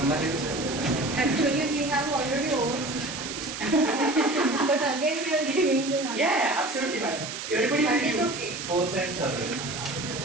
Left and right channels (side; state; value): right; noise; hiss, 7 dB below the sound